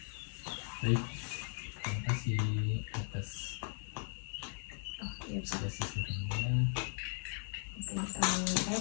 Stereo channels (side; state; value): right; silent; 53 dB below the other